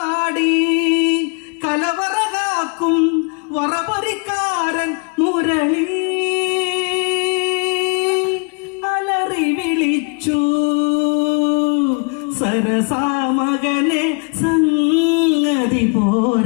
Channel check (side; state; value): right; quieter; 36.6 dB